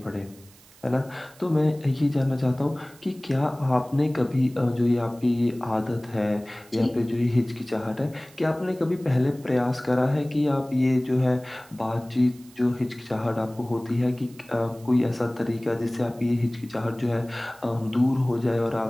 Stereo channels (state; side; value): noise; right; hiss, 25 dB below the sound